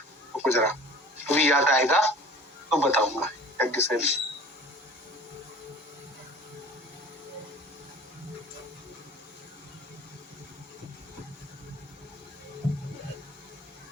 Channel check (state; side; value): normal; both; correlation 0.44